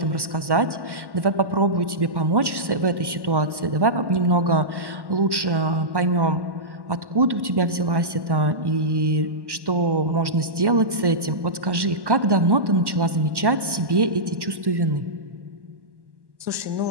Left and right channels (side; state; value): left; late; 1.1 ms